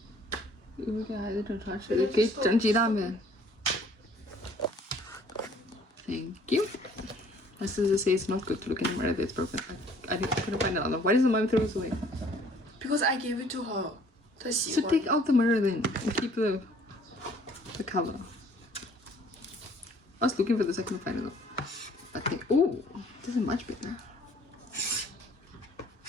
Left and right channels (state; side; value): normal; both; correlation 0.57